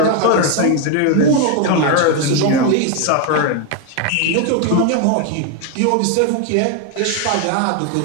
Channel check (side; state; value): both; different; correlation 0.01